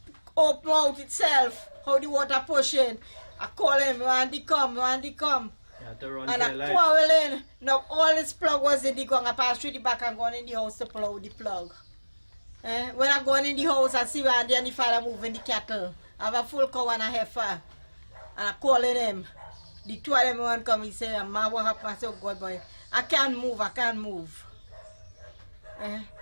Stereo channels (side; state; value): both; inverted; correlation -1.00